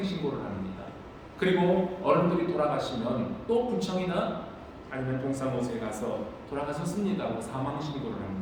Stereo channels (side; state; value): both; identical; correlation 1.00